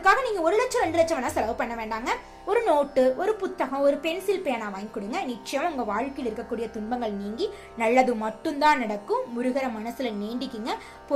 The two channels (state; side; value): identical; both; correlation 1.00